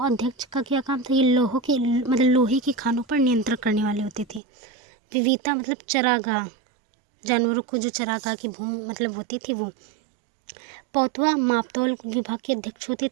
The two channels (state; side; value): drops out; left; at 4.4 s